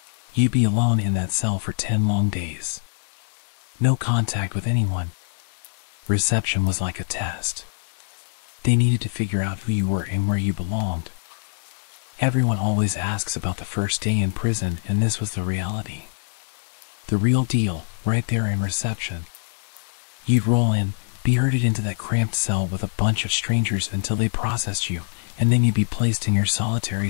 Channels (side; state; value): right; silent; digital silence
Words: You'd be alone in that cell for 10 long days. No contact with anyone. Reception was like a test. They needed to figure out who you were and where you belonged. Everyone always asks about the first day in prison, and this was the reality. The real deal, right there in reception. You'd roll in, be herded into that cramped cell with a bunch of strangers until they processed you, and then you'd be placed in your solitary